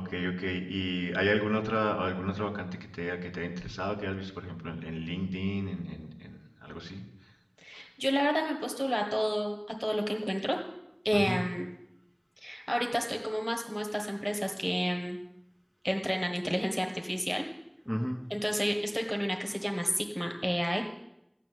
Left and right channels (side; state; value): both; identical; correlation 1.00